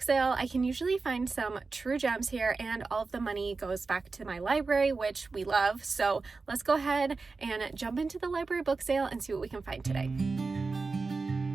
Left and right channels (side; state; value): left; quieter; 4.1 dB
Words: sale. I can usually find some true gems here and all of the money goes back to my library, which we love. So let's go ahead and jump into the library book sale and see what we can find today.